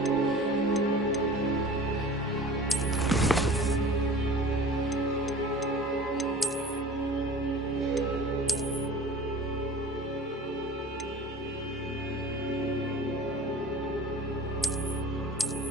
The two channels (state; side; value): normal; both; correlation 0.41